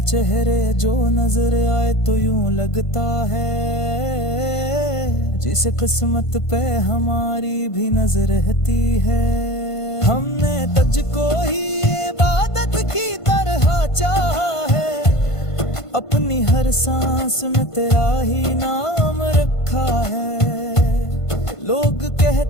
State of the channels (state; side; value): late; right; 1.5 ms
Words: चेहरे जो नजर आए तो यूं लगता है, जिसे किस्मत पे हमारी भी नजर रहती है। हमने तुझको ही इबादत की तरह चाहा है, अपनी हर सांस में तेरा ही नाम रखा है। लोग